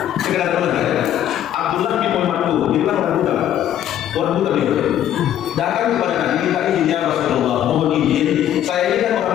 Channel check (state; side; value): quieter; right; 11.1 dB